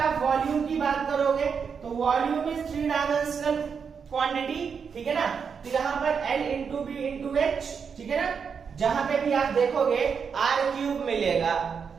वॉल्यूम की बात करोगे तो वॉल्यूम इज 3 डायमेंशनल क्वांटिटी। ठीक है ना, तो यहाँ पर L into B into H. ठीक है ना, जहां पे भी आप देखोगे आर क्यूब मिलेगा,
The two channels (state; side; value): quieter; left; 6.3 dB